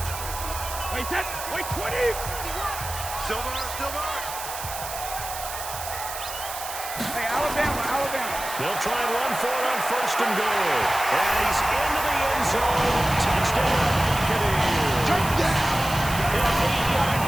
Wait, 10, wait, 20. Silver. Hey, Alabama. They'll try and run for it on 1st and goal. And he's into the end zone. Touchdown, Buccaneers. An 8-yard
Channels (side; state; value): right; noise; hiss, 9 dB below the sound